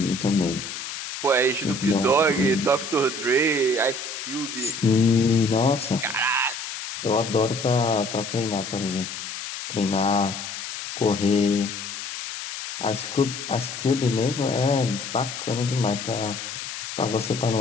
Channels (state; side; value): noise; left; hiss, 8 dB below the sound